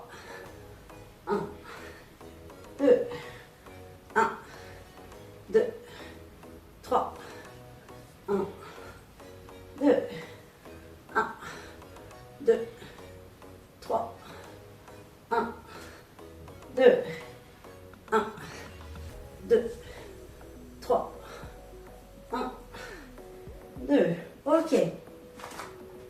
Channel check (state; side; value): identical; both; correlation 1.00